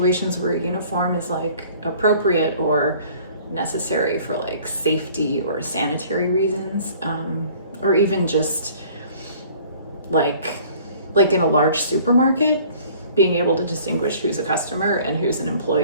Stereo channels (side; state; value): both; inverted; correlation -0.52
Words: where a uniform is, like, appropriate or necessary for, like, safety or sanitary reasons, or even just like in a large supermarket, being able to distinguish who's a customer and who's an